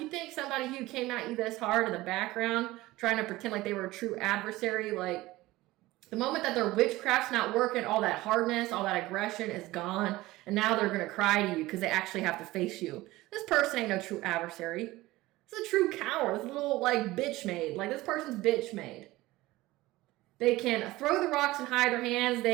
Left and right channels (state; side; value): quieter; left; 18.5 dB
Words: think somebody who came at you this hard in the background, trying to pretend like they were a true adversary, like, the moment that their witchcraft's not working, all that hardness, all that aggression is gone. And now they're going to cry to you because they actually have to face you. This person ain't no true adversary. This is a true coward. This little, like, bitch made. Like, this person's bitch made. They can throw the rocks and hide their hands.